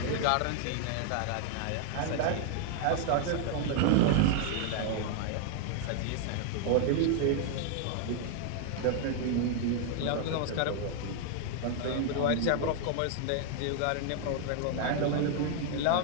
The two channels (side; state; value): both; different; correlation 0.00